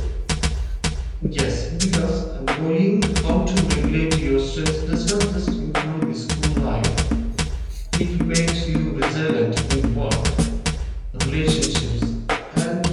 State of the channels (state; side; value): identical; both; correlation 1.00